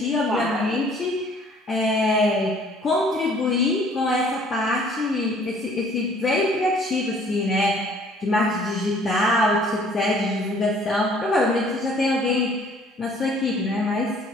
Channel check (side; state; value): both; normal; correlation 0.57